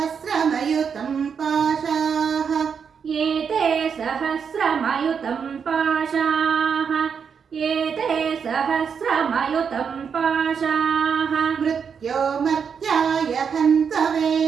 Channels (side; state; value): left; quieter; 6.6 dB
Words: पाशाः एते सहस्रमयुतं पाशाः एते सहस्रमयुतं पाशाः मृत्योर्मर्त्याय हन्तवे